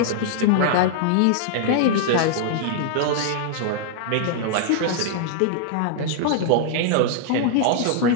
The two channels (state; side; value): different; both; correlation -0.01